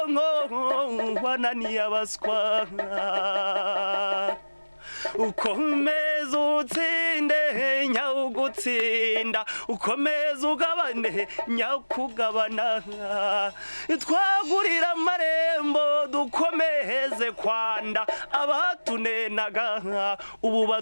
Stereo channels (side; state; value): both; inverted; correlation -1.00